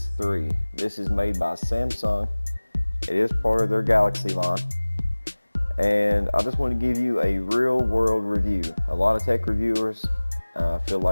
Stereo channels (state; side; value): inverted; both; correlation -1.00